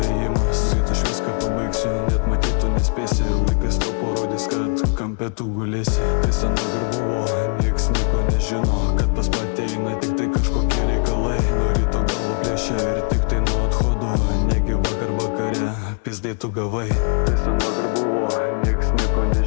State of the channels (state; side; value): quieter; right; 39.3 dB